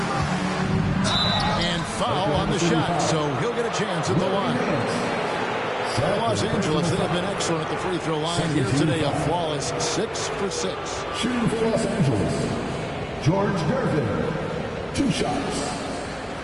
And foul on the shot, so he'll get a chance at the line. Los Angeles, they have been excellent at the free throw line here today. A flawless 6 for 6. Shooting for Los Angeles, George Gervin. 2 shots.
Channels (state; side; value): identical; both; correlation 1.00